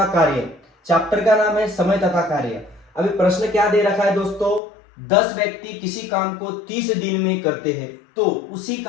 कार्य, चैप्टर का नाम है समय तथा कार्य। अभी प्रश्न क्या दे रखा है दोस्तों, 10 व्यक्ति किसी काम को 30 दिन में करते हैं तो उसी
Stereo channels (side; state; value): right; drops out; at 4.6 s